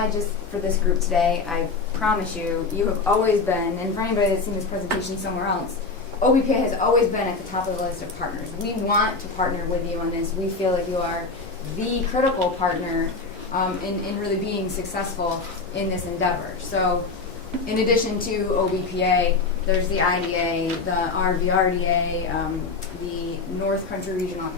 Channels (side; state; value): right; quieter; 4.1 dB